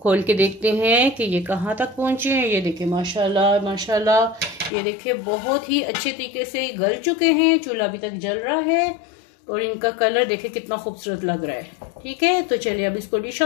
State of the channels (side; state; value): right; drops out; at 4.7 s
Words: खोल के देखते हैं कि ये कहाँ तक पहुँचे हैं। ये देखिए माशाल्लाह माशाल्लाह, ये देखिए बहुत ही अच्छे तरीके से गल चुके हैं। चूल्हा अभी तक जल रहा है और इनका कलर देखिए कितना खूबसूरत लग रहा है। ठीक है, तो चलिए अब इसको डिश